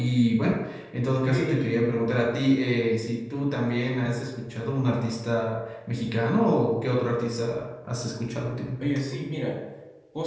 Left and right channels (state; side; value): identical; both; correlation 1.00